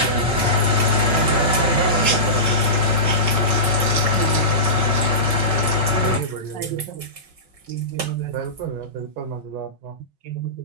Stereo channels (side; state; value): left; late; 5.4 ms